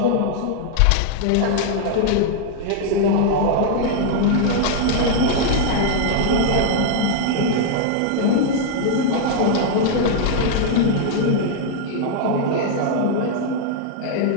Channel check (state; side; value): different; both; correlation -0.01